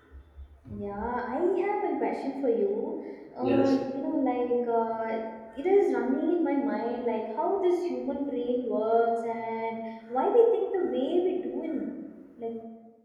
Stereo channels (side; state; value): both; identical; correlation 1.00